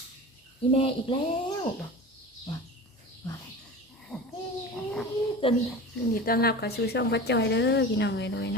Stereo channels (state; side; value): normal; both; correlation 0.33